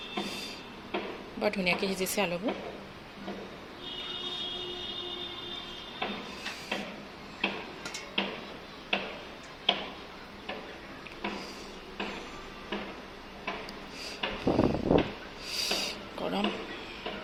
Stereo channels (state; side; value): identical; both; correlation 1.00